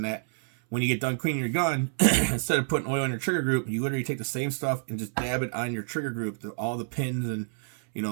that when you get done cleaning your gun, instead of putting oil on your trigger group, you literally take the same stuff and just dab it on your trigger group. All the pins and,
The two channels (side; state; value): left; silent; 59 dB below the other